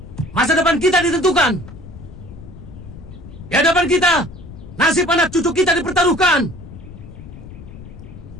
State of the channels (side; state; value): left; noise; rumble, 15 dB below the sound